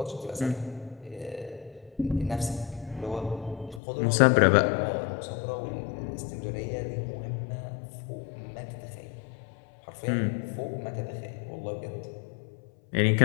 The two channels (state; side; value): drops out; right; at 3.8 s